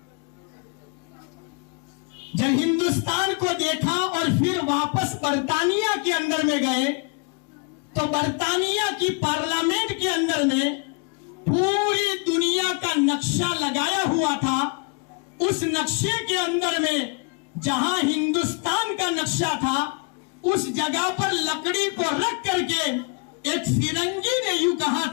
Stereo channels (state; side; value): quieter; right; 35.1 dB